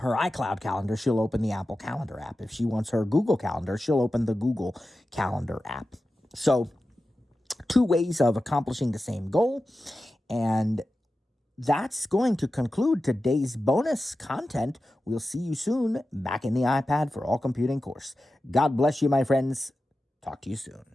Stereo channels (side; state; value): both; normal; correlation 0.93